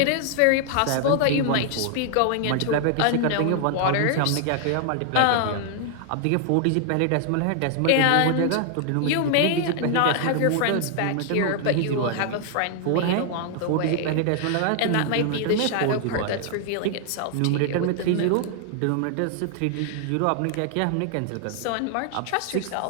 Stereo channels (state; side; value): different; both; correlation 0.00